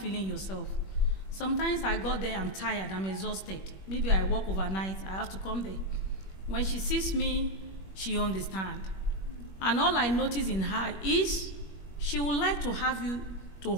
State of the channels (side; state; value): right; late; 21 ms